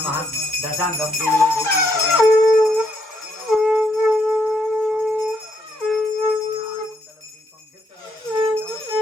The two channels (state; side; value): normal; both; correlation 0.75